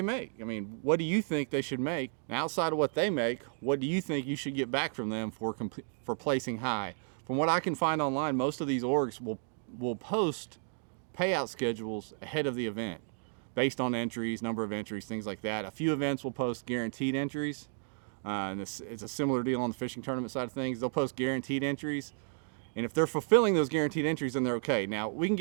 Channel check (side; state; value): left; silent; digital silence